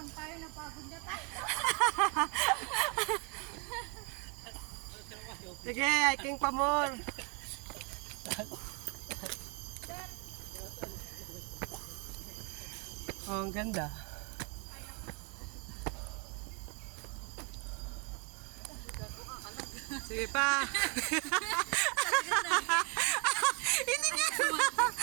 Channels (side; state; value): left; quieter; 33.5 dB